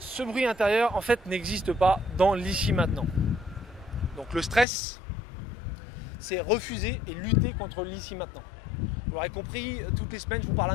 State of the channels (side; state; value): right; drops out; at 4.7 s